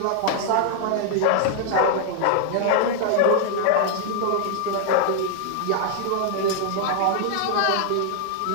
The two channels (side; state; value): both; different; correlation 0.00